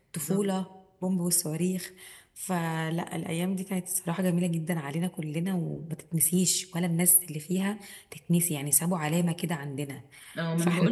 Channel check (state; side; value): identical; both; correlation 1.00